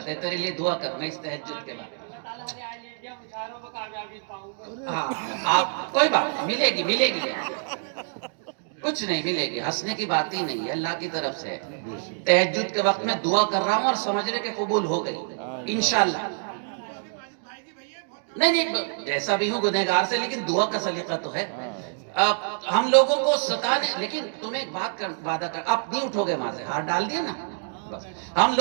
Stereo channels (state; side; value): silent; left; digital silence